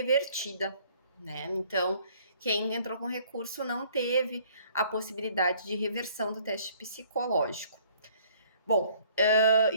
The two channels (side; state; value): both; inverted; correlation -0.58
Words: né? Então, quem entrou com recurso não teve a possibilidade de reversão do teste psicológico. Bom,